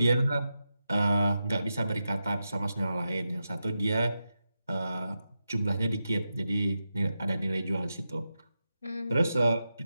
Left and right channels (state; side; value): inverted; both; correlation -0.89